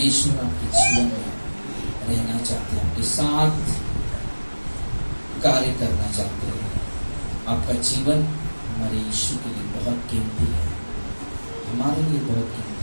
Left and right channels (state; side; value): inverted; both; correlation -1.00